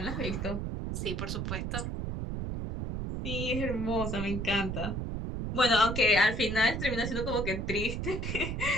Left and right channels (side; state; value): right; noise; rumble, 3 dB below the sound